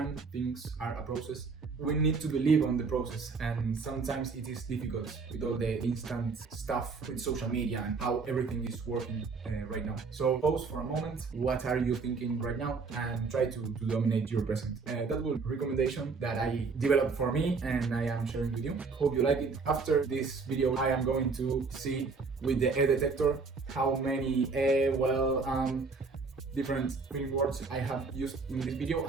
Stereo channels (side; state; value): left; quieter; 4.5 dB